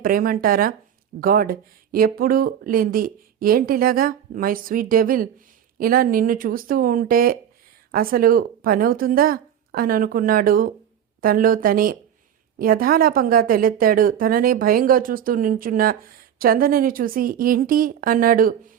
ప్రేమంటారా? గాడ్, ఎప్పుడూ లేంది ఏంటిలాగా? మై స్వీట్ డెవిల్, ఇలా నిన్ను చూస్తూ ఉంటే అసలు పనవుతుందా అని అనుకున్నాడు తనలో తనే. యథాలాపంగా తెలెత్తాడు. తననే భయంగా చూస్తూ నించున్న చందనని చూసి ఏంటి అన్నాడు.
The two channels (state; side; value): quieter; left; 9.4 dB